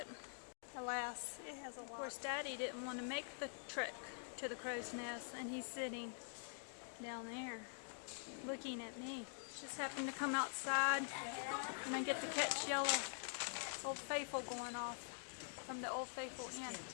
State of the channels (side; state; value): right; silent; digital silence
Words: alas, it has a lock. Of course, Daddy didn't want to make the trek to the crow's nest, and he's sitting down there looking at me. Just happened to come outside, and I get to catch Yellow Old Faithful going off from the Old Faithful Inn.